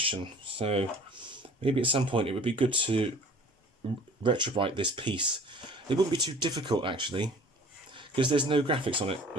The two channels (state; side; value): normal; both; correlation 0.48